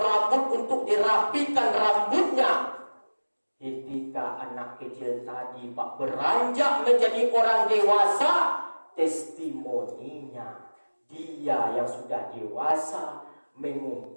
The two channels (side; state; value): both; inverted; correlation -1.00